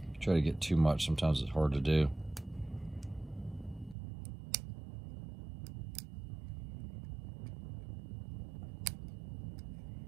Try to get too much, sometimes it's hard to do.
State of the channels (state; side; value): drops out; left; at 4.0 s